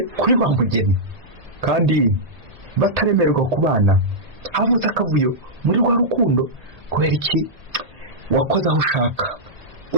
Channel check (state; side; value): late; left; 1.8 ms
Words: kuri wa mugeni kandi bataremererwa kubana. Havuze akavuyo muri rwa rukundo kubera iki wakoze aho ushaka,